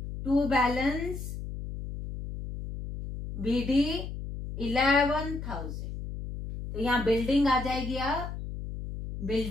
टू बैलेंस BD 11,000, तो यहां बिल्डिंग आ जाएगी, अब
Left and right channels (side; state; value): left; noise; hum, 8 dB below the sound